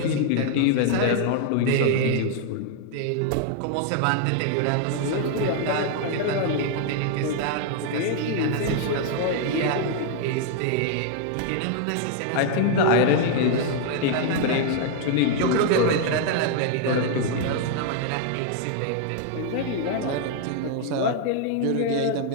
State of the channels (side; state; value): both; different; correlation 0.00